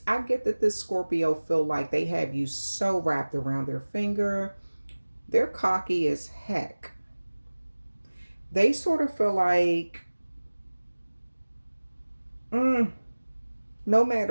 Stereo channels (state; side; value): inverted; both; correlation -1.00